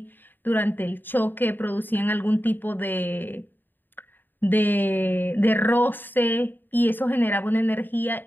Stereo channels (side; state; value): right; late; 0.092 ms